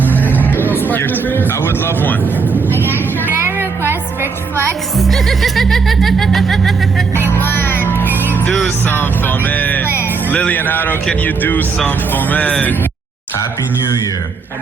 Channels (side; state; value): left; quieter; 5.0 dB